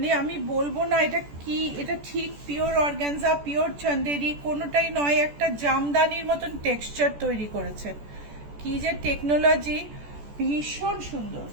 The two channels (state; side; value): late; left; 14 ms